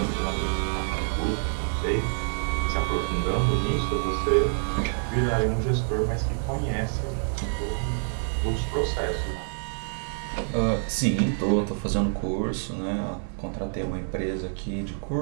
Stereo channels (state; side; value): silent; left; digital silence